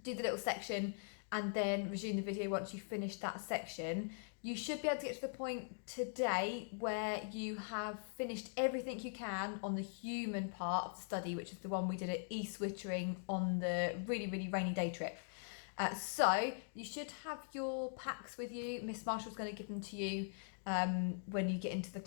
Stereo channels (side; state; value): right; silent; digital silence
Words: do the little section, and then resume the video once you finish that section. You should be able to get to the point today where you have finished everything you can on the human part of the study, which is the one we did at East Wittering on the really, really rainy day trip. So you should have your packs with you. Miss Marshall's going to give them to you when you get into the